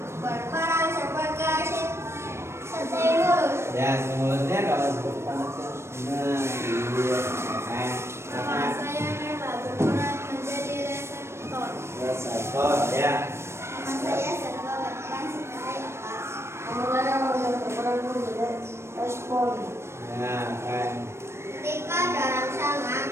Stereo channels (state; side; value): late; left; 0.13 ms